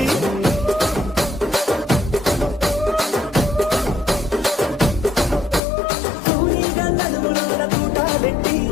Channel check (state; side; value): drops out; right; at 5.6 s